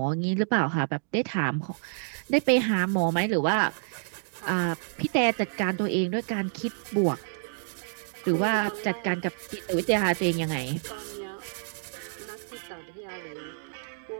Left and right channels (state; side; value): silent; left; digital silence